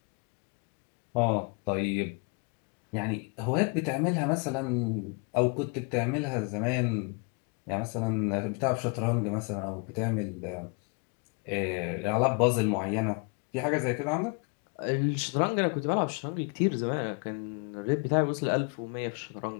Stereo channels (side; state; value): right; quieter; 33.2 dB